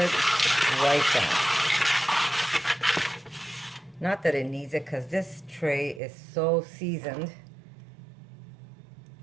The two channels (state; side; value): drops out; left; at 6.0 s